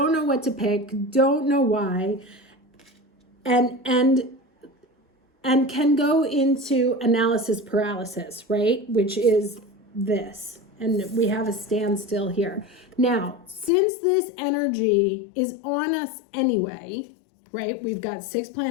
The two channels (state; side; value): drops out; right; at 13.7 s